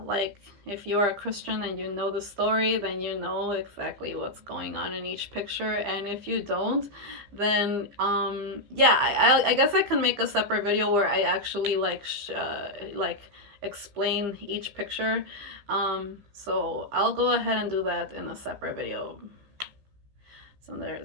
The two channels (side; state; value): left; late; 15 ms